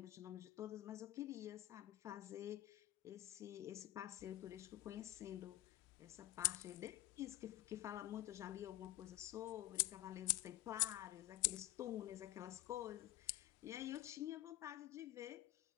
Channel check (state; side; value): quieter; right; 16.0 dB